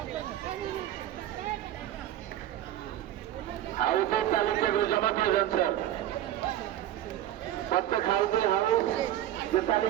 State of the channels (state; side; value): quieter; left; 12.5 dB